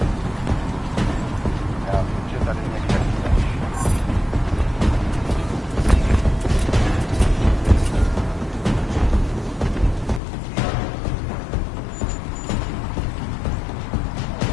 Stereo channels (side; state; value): right; drops out; at 10.2 s